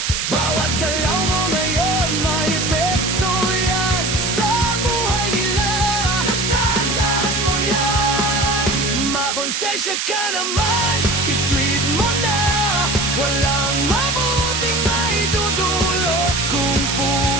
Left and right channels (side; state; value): right; noise; hiss, 1 dB below the sound